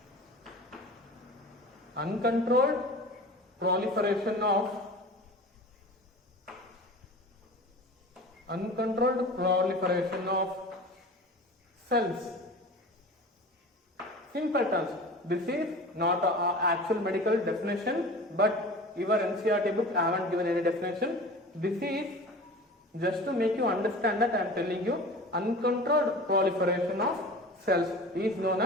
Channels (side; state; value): both; normal; correlation 0.37